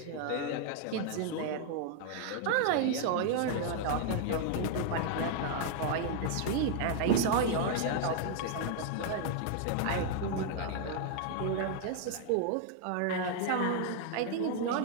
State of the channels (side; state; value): both; different; correlation 0.00